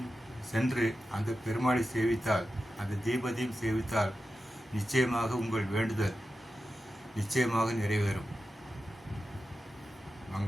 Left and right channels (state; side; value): normal; both; correlation 0.92